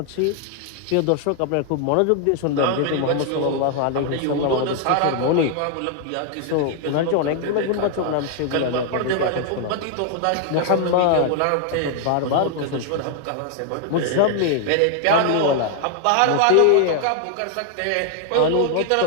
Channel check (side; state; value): both; different; correlation 0.00